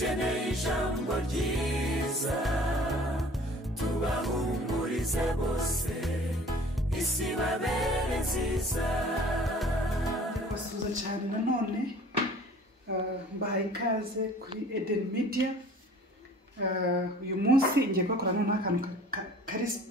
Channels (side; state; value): both; normal; correlation 0.49